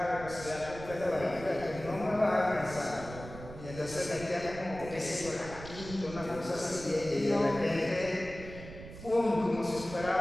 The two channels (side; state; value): right; noise; rumble, 13 dB below the sound